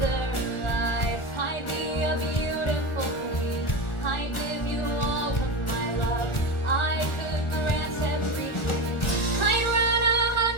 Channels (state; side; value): late; right; 1.4 ms